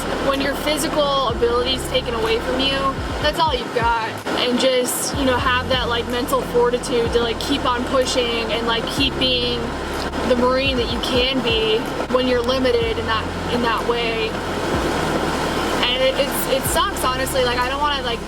when your physical ability is taken away from you, that's all you've got. And just, you know, have that like mental fortitude to like keep on pushing and like keep being the Marine that you can be when you're limited in that way. And it sucks, honestly. Like, I don't want to like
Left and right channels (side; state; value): both; identical; correlation 1.00